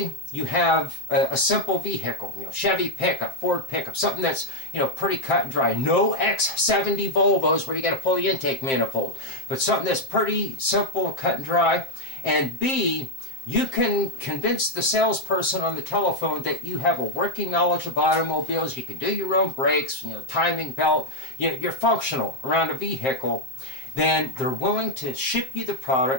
you have a simple vehicle, Chevy pickup, Ford pickup, something that's pretty cut and dry, no X70 Volvos where you got to pull the intake manifold, but something that's pretty simple and cut and dry, and B, you can convince the salesperson on the telephone that you have a working knowledge of automobiles, you can do your own brakes, timing belt, you're functional around a vehicle, then they're willing to ship you the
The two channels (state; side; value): late; right; 7.6 ms